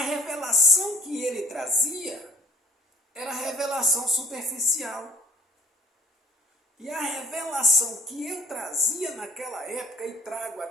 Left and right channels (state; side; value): normal; both; correlation 0.51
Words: revelação que ele trazia era revelação superficial. E a revelação que eu trazia naquela época e trago